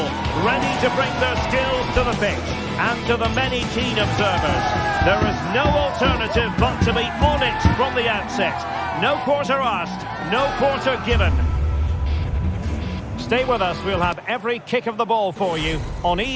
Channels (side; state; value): both; identical; correlation 1.00